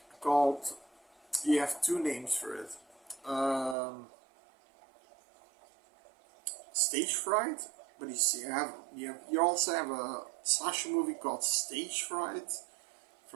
called. You have two names for it. Stage fright, but you see, you also have a slasher movie called Stage Fright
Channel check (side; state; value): left; drops out; at 3.8 s